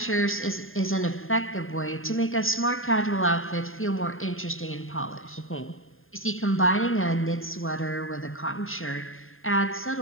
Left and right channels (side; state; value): right; late; 0.60 ms